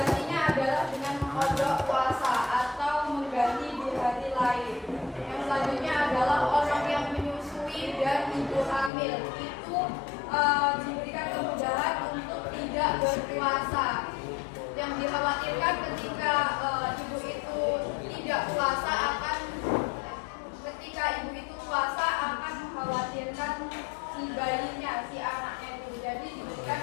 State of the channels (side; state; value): right; drops out; at 8.9 s